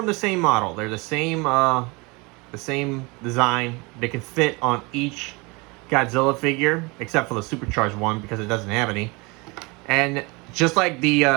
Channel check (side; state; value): left; quieter; 26.8 dB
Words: the same model. They're the same design. They can fit on each Godzilla figure, except for the supercharged one because it doesn't have any. And just like